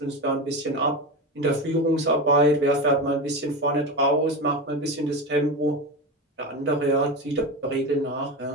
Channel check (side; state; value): both; normal; correlation 0.20